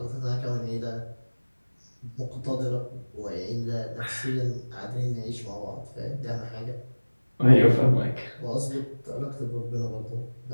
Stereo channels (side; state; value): both; inverted; correlation -1.00